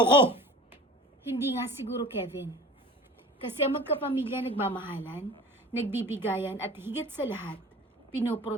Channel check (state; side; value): normal; both; correlation 0.40